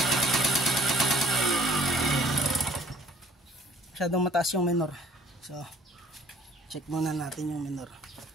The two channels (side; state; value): both; normal; correlation 0.56